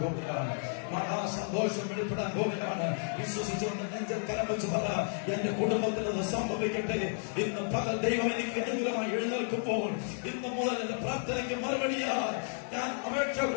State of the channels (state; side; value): silent; right; 56 dB below the other